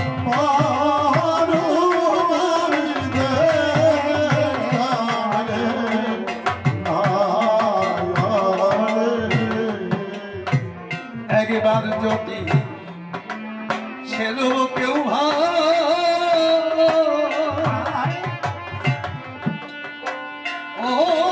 একবার যদি ছেলে কেউ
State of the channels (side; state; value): both; identical; correlation 1.00